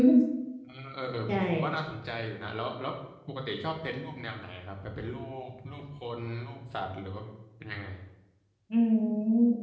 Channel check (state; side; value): identical; both; correlation 1.00